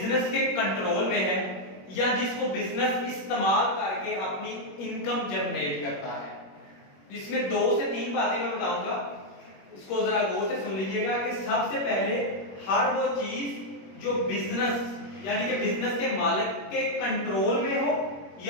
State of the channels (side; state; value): right; late; 21 ms